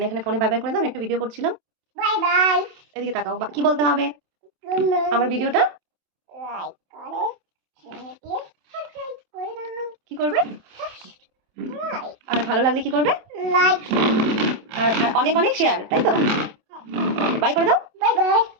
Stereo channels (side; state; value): left; late; 27 ms